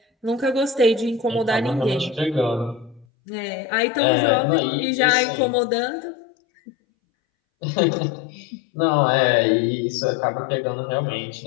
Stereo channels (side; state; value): right; drops out; at 3.1 s